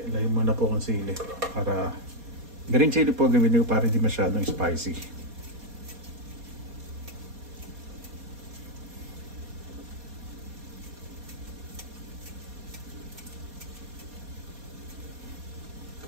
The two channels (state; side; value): late; left; 4.2 ms